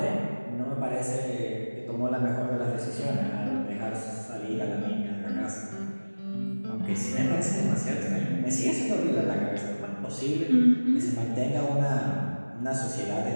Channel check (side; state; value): both; inverted; correlation -1.00